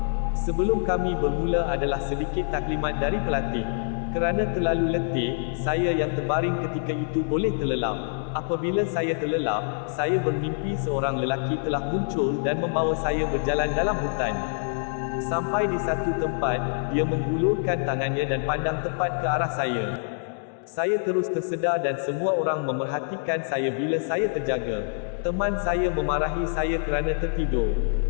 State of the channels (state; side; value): silent; right; digital silence